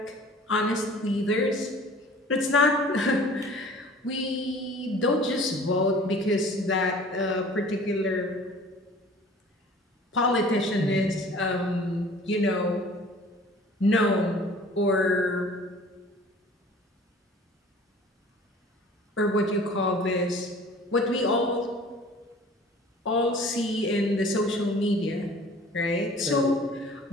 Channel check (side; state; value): both; normal; correlation 0.47